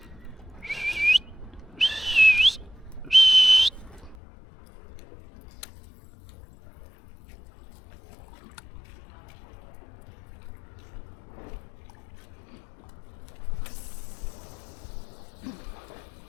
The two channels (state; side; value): drops out; right; at 4.2 s